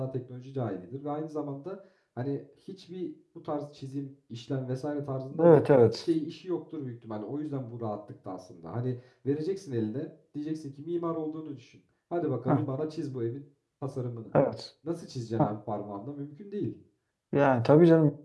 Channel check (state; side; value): identical; both; correlation 1.00